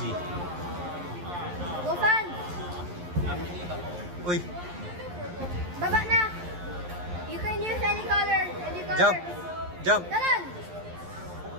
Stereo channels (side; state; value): left; late; 11 ms